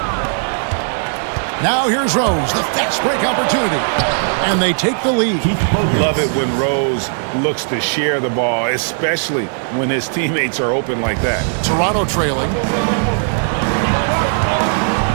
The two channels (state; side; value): silent; left; digital silence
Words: Now here's Rose, the fast break opportunity. And they take the lead. Love it when Rose looks to share the ball, especially when his teammates are open like that. Toronto trailing.